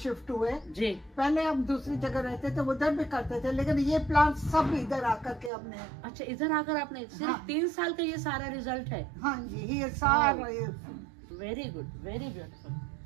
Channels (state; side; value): drops out; left; at 5.5 s